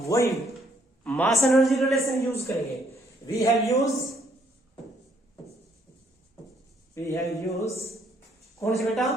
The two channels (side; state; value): both; normal; correlation 0.68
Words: मास एनर्जी रिलेशन यूज करेंगे। वी हैव यूज कौन सी बेटा?